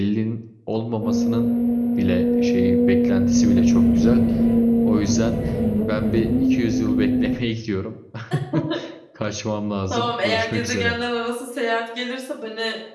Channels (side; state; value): both; identical; correlation 1.00